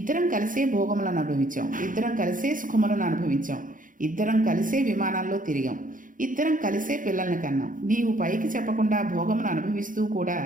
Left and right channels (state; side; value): late; left; 0.39 ms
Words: కలిసే భోగములను అనుభవించాం. ఇద్దరం కలిసే సుఖములను అనుభవించాం. ఇద్దరం కలిసే విమానాల్లో తిరిగాం. ఇద్దరం కలిసే పిల్లల్ని కన్నాం. నీవు పైకి చెప్పకుండా భోగమును అనుభవిస్తూ కూడా